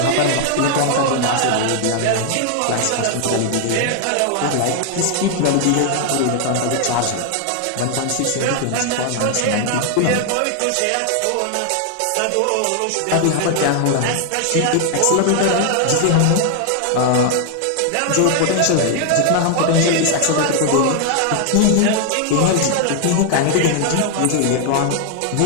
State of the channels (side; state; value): both; different; correlation 0.00